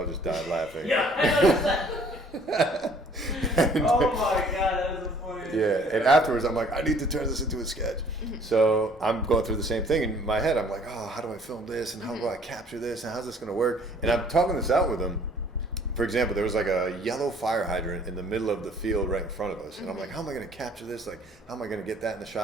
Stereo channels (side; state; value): both; normal; correlation 0.57